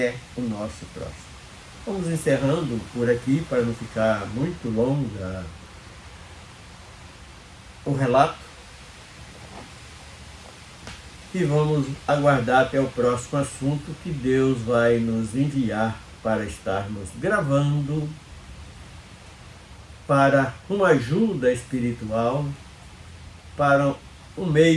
o nosso próximo. Vamos encerrando por aqui para não ficar muito longa o relato e vamos aguardar até o próximo assunto que Deus vai nos enviar para estarmos gravando para uma ajuda espiritual, para um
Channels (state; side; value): identical; both; correlation 1.00